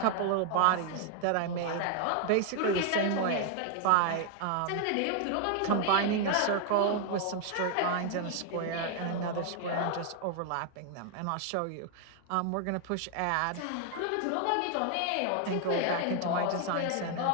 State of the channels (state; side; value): different; both; correlation 0.00